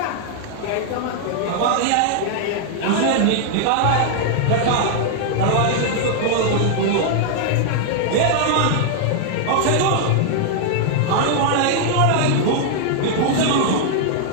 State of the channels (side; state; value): both; different; correlation -0.01